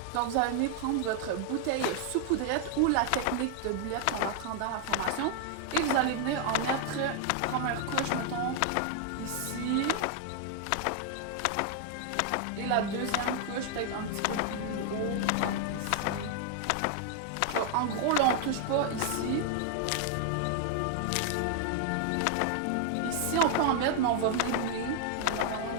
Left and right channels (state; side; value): different; both; correlation 0.00